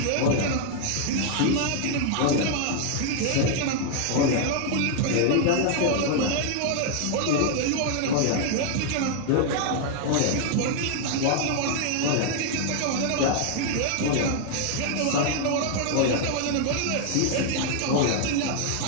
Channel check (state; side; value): different; both; correlation 0.00